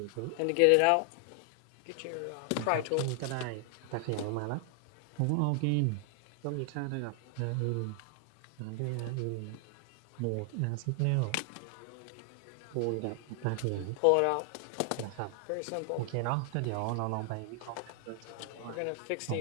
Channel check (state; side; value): different; both; correlation 0.00